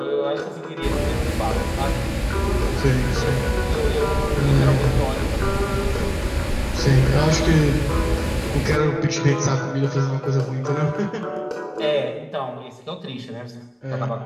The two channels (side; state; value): both; identical; correlation 1.00